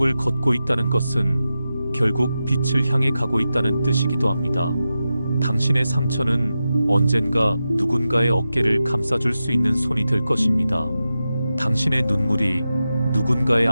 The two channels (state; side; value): inverted; both; correlation -0.91